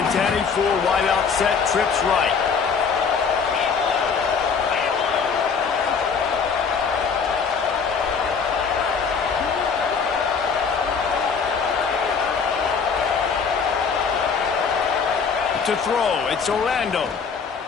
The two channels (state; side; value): quieter; right; 5.8 dB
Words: 10, 4 wide out set, trips right. To throw, it's Orlando.